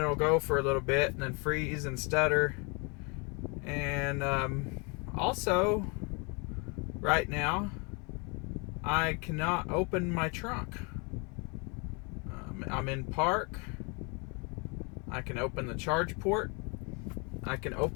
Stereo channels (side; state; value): right; quieter; 32.2 dB